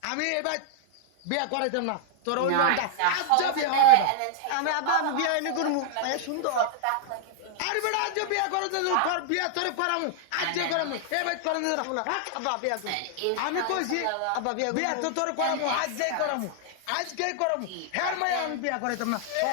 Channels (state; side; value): different; both; correlation -0.01